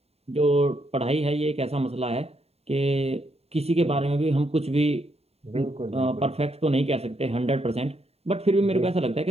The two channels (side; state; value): left; late; 0.30 ms